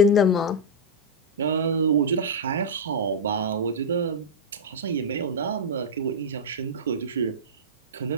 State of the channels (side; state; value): both; normal; correlation -0.06